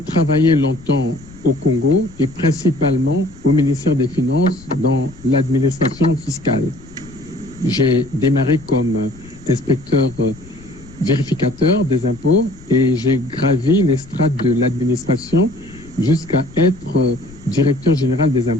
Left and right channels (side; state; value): left; noise; rumble, 20 dB below the sound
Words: travaillé longtemps au Congo et principalement au ministère des Finances dans l'administration fiscale. J'ai démarré comme inspecteur vérificateur des impôts et j'ai gravi les strates de l'administration jusqu'à être directeur général des